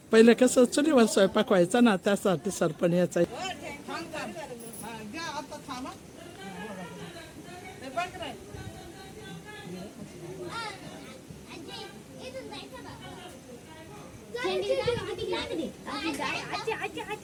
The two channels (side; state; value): both; identical; correlation 1.00